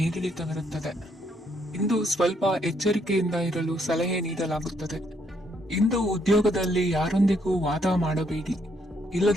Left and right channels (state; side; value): normal; both; correlation 0.72